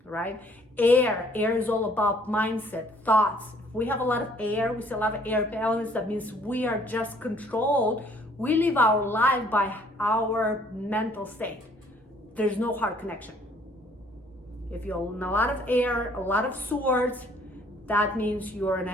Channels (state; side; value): normal; both; correlation 0.60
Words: right? Air is all about mindset, thoughts. We have a lot of air, we see a lot of air elements. That means we are just controlled. We live our life by our mental state. There's no heart connection. If you're in a lot of air, a lot of swords, that means you're in